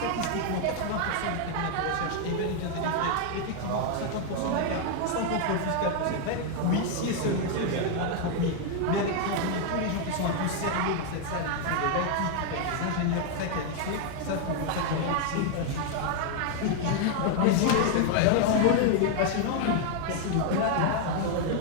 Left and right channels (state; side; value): different; both; correlation 0.00